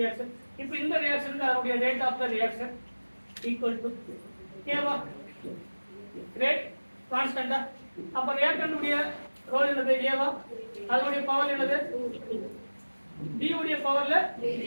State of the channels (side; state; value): both; inverted; correlation -1.00